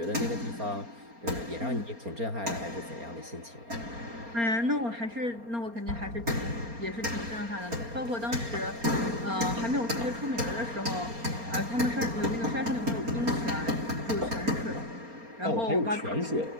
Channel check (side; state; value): left; late; 4.3 ms